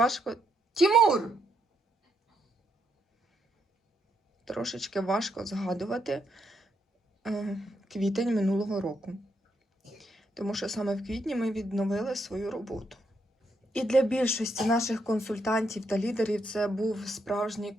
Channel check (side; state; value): both; normal; correlation 0.78